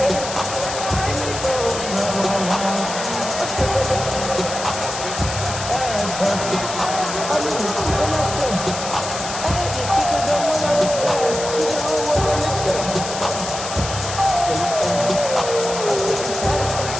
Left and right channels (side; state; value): left; noise; hiss, 7 dB below the sound